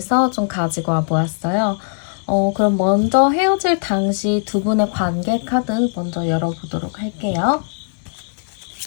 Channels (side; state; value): right; silent; digital silence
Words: 좀 가지고 와 보았어요. 그럼 먼저 헤어질 당시 두 분의 관계 카드 먼저 열어보도록 할게요.